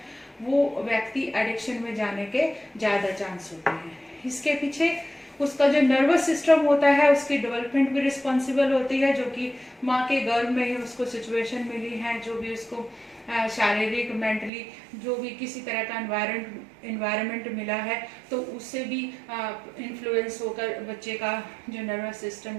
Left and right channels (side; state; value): left; drops out; at 14.5 s